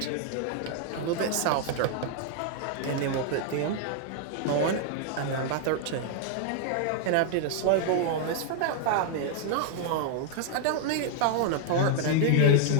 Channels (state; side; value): different; both; correlation -0.01